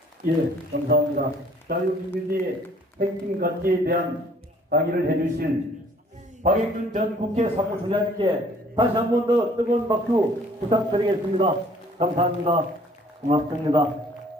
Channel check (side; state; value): both; normal; correlation 0.57